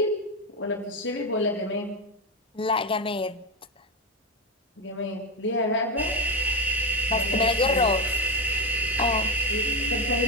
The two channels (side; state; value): both; normal; correlation 0.11